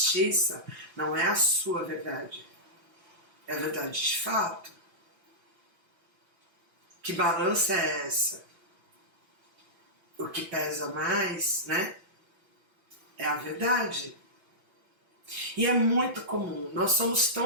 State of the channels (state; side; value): late; left; 5.9 ms